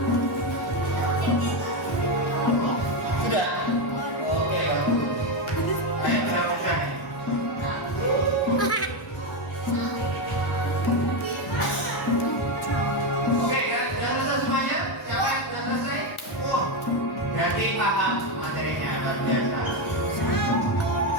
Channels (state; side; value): normal; both; correlation 0.09